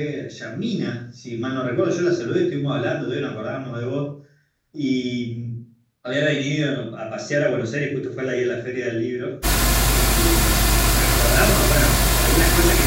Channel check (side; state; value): both; identical; correlation 1.00